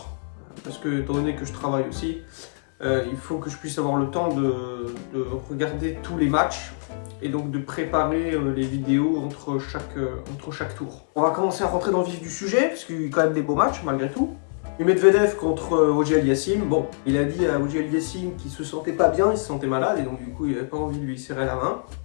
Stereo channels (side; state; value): right; silent; 62 dB below the other